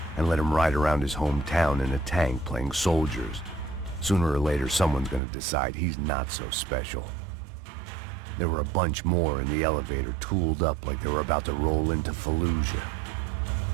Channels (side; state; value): left; drops out; at 5.2 s